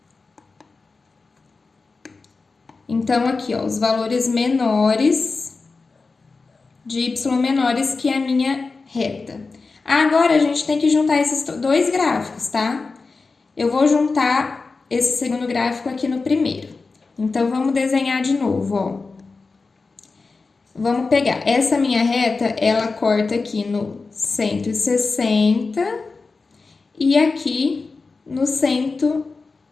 Então, aqui, ó, os valores menores de y menores que a minha reta. Agora, a gente tem que juntar esses dois gráficos, tá? Eu vou juntar esse segundo gráfico aqui no primeiro. Então, vamos desenhar de novo, ó. Vamos pegar essa minha reta, ela corta aqui no 160 e aqui no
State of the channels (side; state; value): right; quieter; 4.1 dB